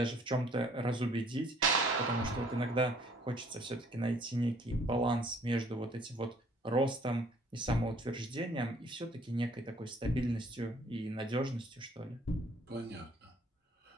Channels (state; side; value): normal; both; correlation 0.59